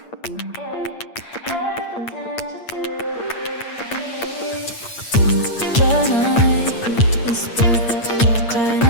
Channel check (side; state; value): right; late; 8.7 ms